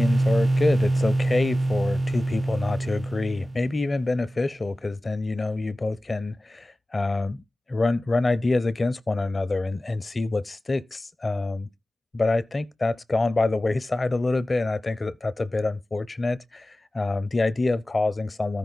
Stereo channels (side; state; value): both; normal; correlation 0.96